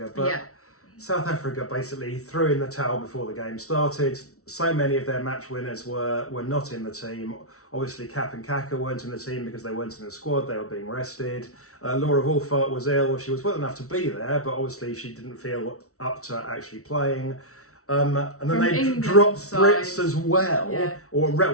but South Africa basically threw in the towel before the game started. So many of their match winners were not in the team. Obviously, Cap and Kaka weren't in the team because they weren't in the squad. They were being rested. Laura Wolfart was ill. She was well enough to be there, but obviously she didn't feel up to actually playing. And then they dropped Brits as well, or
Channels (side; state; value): right; late; 0.64 ms